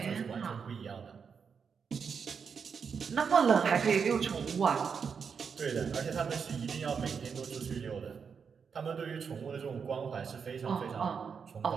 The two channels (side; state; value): left; quieter; 6.2 dB